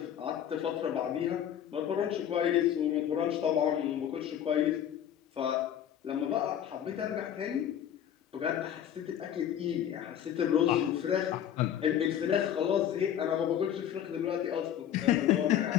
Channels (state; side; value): quieter; right; 10.0 dB